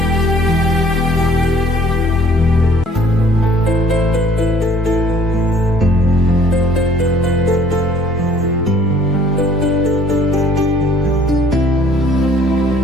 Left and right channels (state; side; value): normal; both; correlation 0.56